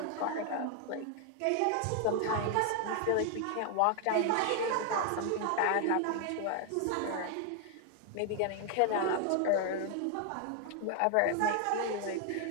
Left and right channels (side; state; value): both; different; correlation 0.00